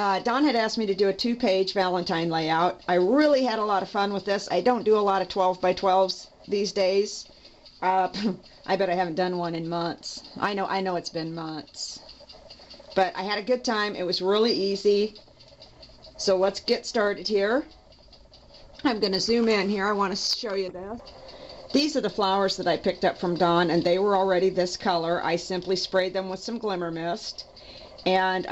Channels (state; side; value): identical; both; correlation 1.00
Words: Dawn had asked me to do a 2-page Valentine layout. I really had a lot of fun with this. I don't do a lot of 12 by 12s these days. I bet I haven't done one in months. I know it's been months. But I had a good time. It was really easy. So let's get started here. I'm going to zoom in here. I want to show you this. These are the flowers that I picked up from Dawn, and they were already this color. I simply sprayed them with some glimmer mist. And